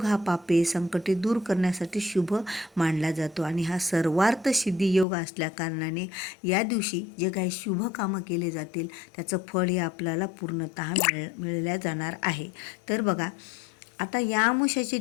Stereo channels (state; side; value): drops out; right; at 5.1 s